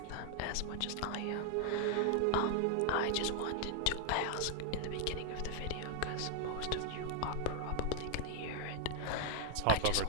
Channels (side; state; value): both; different; correlation -0.01